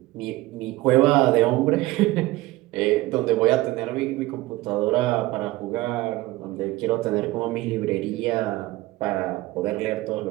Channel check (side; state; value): left; quieter; 18.7 dB